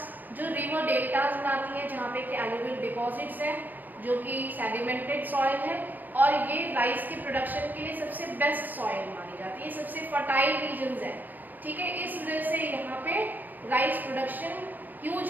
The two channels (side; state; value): left; late; 0.086 ms